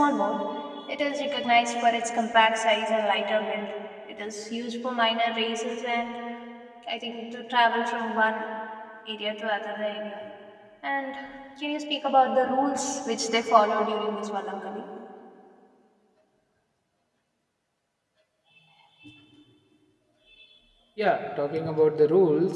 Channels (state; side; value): identical; both; correlation 1.00